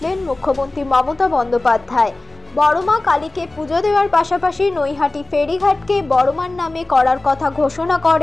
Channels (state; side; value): quieter; right; 3.0 dB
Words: মুখ্যমন্ত্রী মমতা বন্দ্যোপাধ্যায়। বড়মা কালীকে পুজো দেওয়ার পাশাপাশি নৈহাটি ফেরিঘাটকে বড়মার নামে করার কথা ঘোষণা